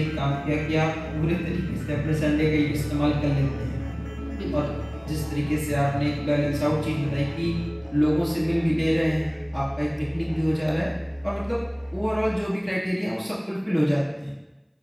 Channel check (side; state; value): both; identical; correlation 1.00